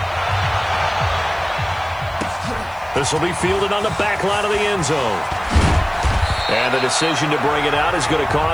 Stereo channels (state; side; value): noise; left; hiss, 28 dB below the sound